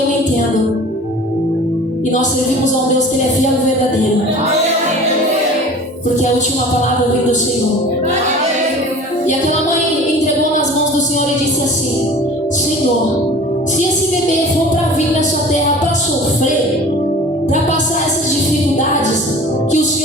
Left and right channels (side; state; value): both; normal; correlation 0.43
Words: entendo, e nós servimos a um Deus que Ele é fiel e verdadeiro, porque a última palavra vem do Senhor. E aquela mãe entregou nas mãos do Senhor e disse assim: Senhor, se esse bebê for para vir nessa terra para sofrer, para passar essas dificuldades, que o